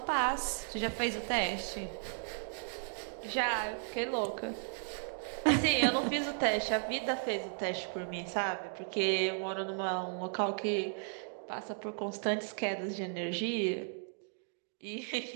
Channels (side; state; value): left; silent; 54 dB below the other